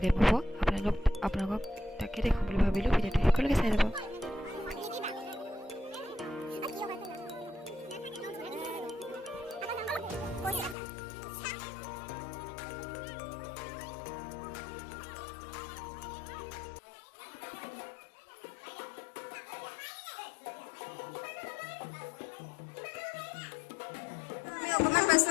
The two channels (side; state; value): right; drops out; at 10.8 s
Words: হ'ব। আপোনালোকক তাকে দেখাম বুলি ভাবিলোঁ। ভিডিঅ'টো সকলোকে চাই যাব। অকণমান পাছত